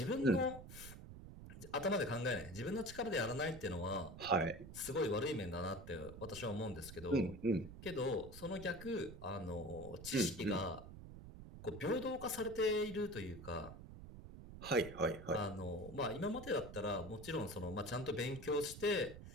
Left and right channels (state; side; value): noise; right; rumble, 13 dB below the sound